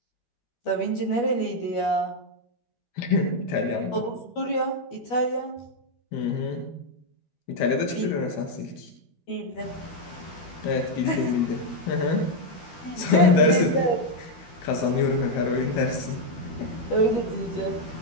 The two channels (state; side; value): late; right; 12 ms